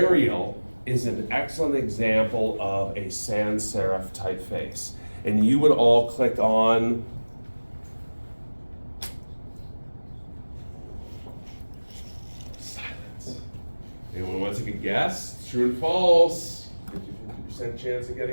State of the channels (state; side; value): inverted; both; correlation -1.00